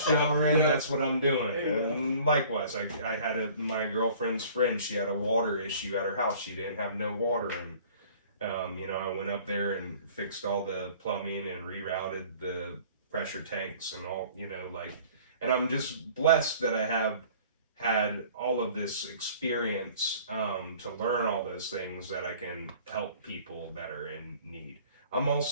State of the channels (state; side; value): inverted; both; correlation -0.50